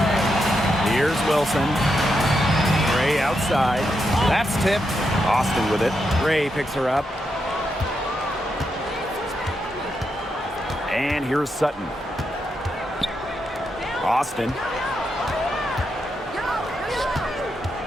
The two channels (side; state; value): both; normal; correlation 0.83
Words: Here's Wilson. Gray outside. That's tipped. Austin with it. Gray picks her up. And here's Sutton. Austin.